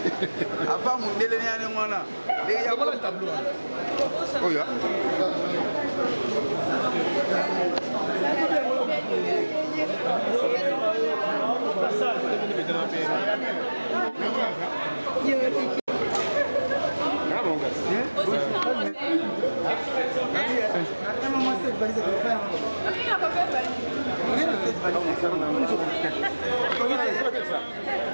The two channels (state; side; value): inverted; both; correlation -1.00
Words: Apa Mundele ni ane mwana. Ya voilà le tableau. Oh ya.